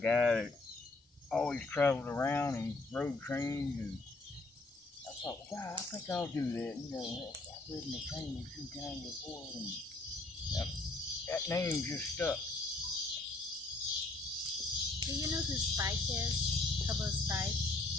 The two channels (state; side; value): quieter; right; 3.1 dB